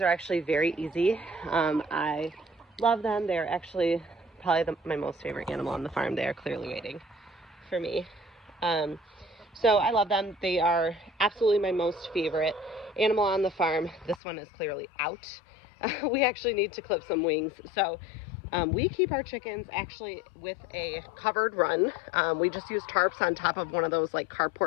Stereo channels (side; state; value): right; drops out; at 14.2 s